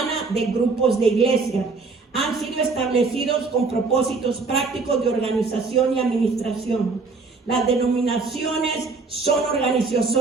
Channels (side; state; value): left; quieter; 4.2 dB